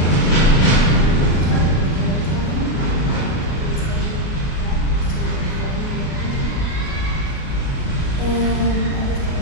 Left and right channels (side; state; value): right; late; 37 ms